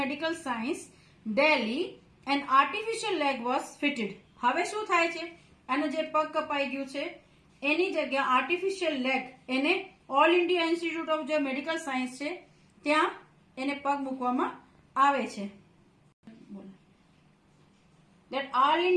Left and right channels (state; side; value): identical; both; correlation 1.00